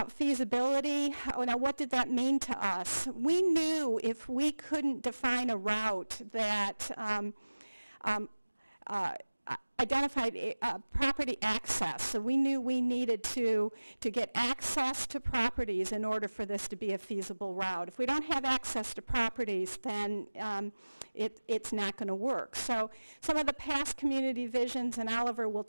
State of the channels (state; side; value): inverted; both; correlation -1.00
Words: feasibility. Now, what did that mean to us? We knew if we couldn't define a route that identified property access. So we knew we needed to get access to properties in order for this to be a feasible route. If we don't have access to properties, then it's not going to work. So some of the past community visions, and Oliver will